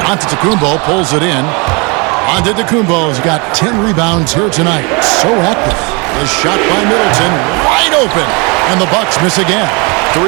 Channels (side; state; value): left; quieter; 29.9 dB